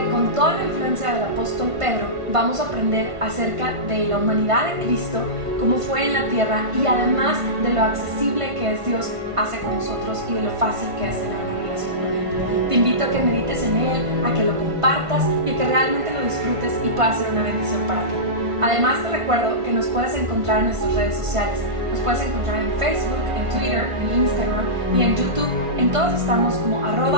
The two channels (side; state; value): left; late; 1.5 ms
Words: con toda la influencia del apóstol Pedro vamos a aprender acerca de la humanidad de Cristo, cómo fue en la tierra y además de lo accesible que es Dios hace con nosotros y de lo fácil que es tener una relación con Él. Te invito a que medites en Él, a que lo compartas y a que realmente lo disfrutes y pueda ser una bendición para ti. Además te recuerdo que nos puedes encontrar en nuestras redes sociales. Nos puedes encontrar en Facebook, en Twitter, en Instagram y en YouTube. En todos estamos como